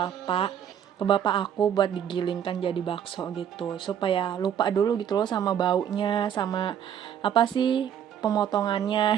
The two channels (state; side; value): quieter; left; 9.3 dB